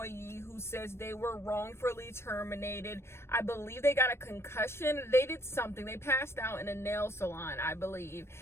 who says they were wrongfully terminated. I believe they got a concussion. They did something. They passed out in a nail salon, I believe,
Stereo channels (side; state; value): right; late; 0.12 ms